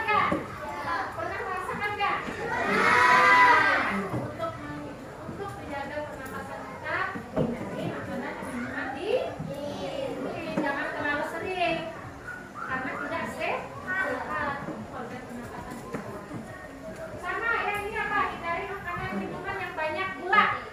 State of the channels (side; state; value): both; identical; correlation 1.00